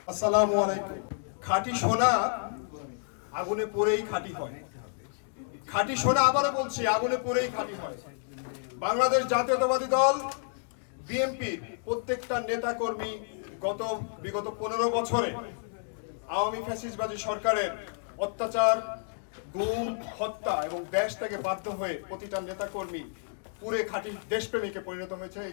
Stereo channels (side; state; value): right; silent; digital silence